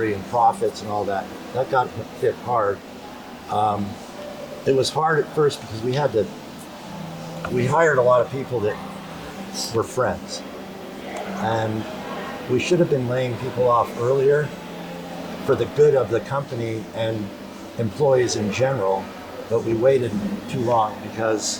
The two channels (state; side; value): identical; both; correlation 1.00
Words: and profits and all that got hit hard. It was hard at first because we hired a lot of people that were friends, and we should have been laying people off earlier for the good of the company and employees in general, but we waited too long